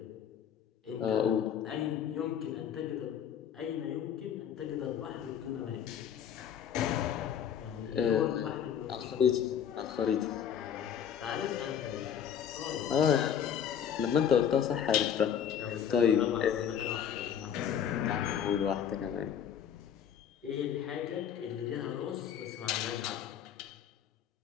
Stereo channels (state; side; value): quieter; right; 8.7 dB